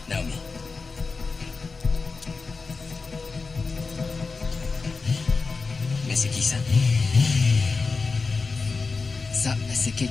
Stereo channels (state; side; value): quieter; right; 4.3 dB